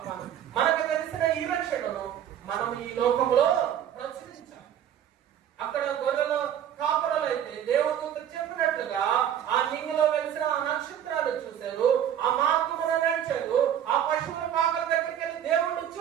మనకు తెలిసిన ఈ రక్షణను మనం ఈ లోకంలో ప్రచురించాలి. అక్కడ గొర్రెలు కాపురలు అయితే దేవదూత చెప్పినట్లుగా ఆ నింగిలో వెలిసిన ఆ నక్షత్రాలు చూశారు, ఆ మార్గమున నడిచారు, ఆ పశువుల పాకల దగ్గరికి వెళ్ళి దేవుడు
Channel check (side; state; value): left; quieter; 10.0 dB